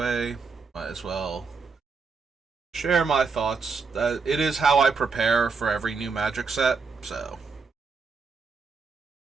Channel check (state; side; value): quieter; left; 4.9 dB